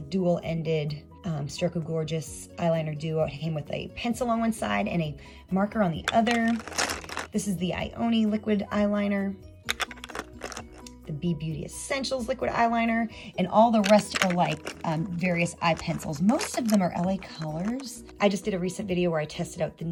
dual-ended Stroke of Gorgeous eyeliner duo. It came with a pencil on one side and a marker on the other. This is the IONI liquid eyeliner, the Be Beauty Essentials liquid eyeliner, and all the rest are like various eye pencils. Most of them are LA Colors. I just did a recent video where I tested out the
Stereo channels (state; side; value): identical; both; correlation 1.00